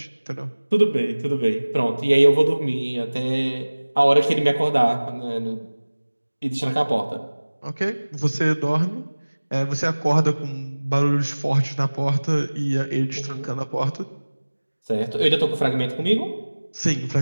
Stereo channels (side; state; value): both; inverted; correlation -1.00